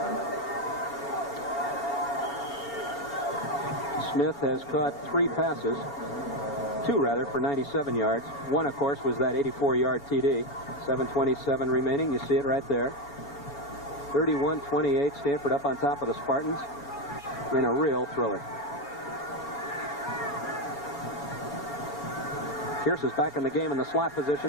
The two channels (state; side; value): late; right; 4.3 ms